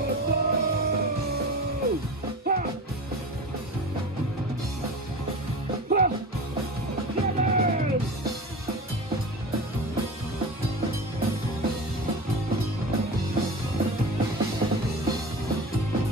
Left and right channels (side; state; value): both; normal; correlation 0.31